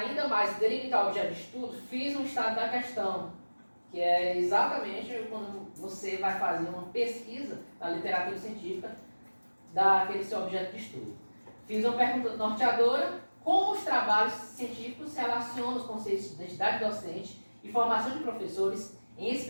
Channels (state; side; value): inverted; both; correlation -1.00